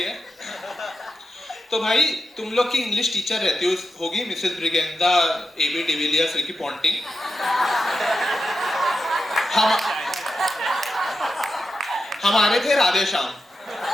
है। तो भाई तुम लोग की इंग्लिश टीचर रहती होगी मिसेस ब्रिगेंदा, एबी डिविलियर्स, रिकी पॉन्टिंग। हम हमारे थे राधे श्याम।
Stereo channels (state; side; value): normal; both; correlation 0.88